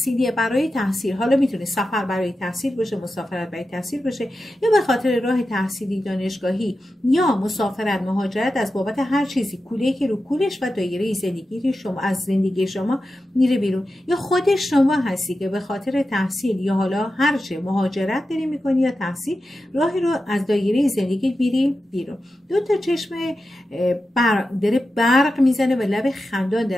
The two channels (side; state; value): both; normal; correlation 0.91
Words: برای تحصیل. حالا میتونه سفر برای تحصیل باشه، مسافرت برای تحصیل باشه، یا به خاطر راه تحصیلی، دانشگاهی، یا مسافرت، مهاجرت، از بابت هر چیزی کوله‌ای که رو کولش و دایره زندگی شما از زندگی شما میره بیرون. یا خود شما هستی که به خاطر تحصیل یا حالا هر چه مهاجرت داری میکنی یا تحصیل، راهی رو از دایره زندگی میری بیرون. دو تا چشم داره برق میزنه و لب خندان